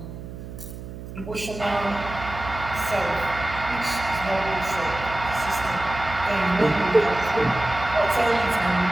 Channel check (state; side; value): noise; right; hum, 11 dB below the sound